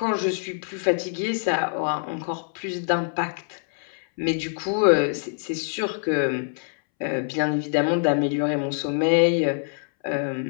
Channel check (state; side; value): silent; right; 62 dB below the other